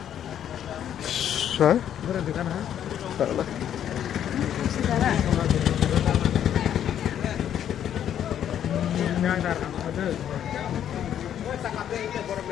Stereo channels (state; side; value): quieter; right; 10.0 dB